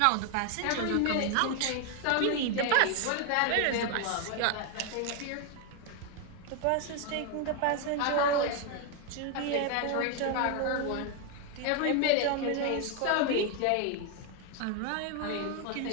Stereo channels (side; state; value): both; different; correlation 0.01